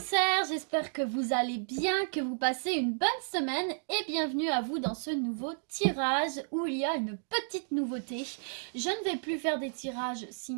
j'espère que vous allez bien, que vous passez une bonne semaine et bienvenue à vous dans ce nouveau tirage où il y a une petite nouveauté. Je ne vais plus faire des tirages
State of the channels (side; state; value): left; silent; digital silence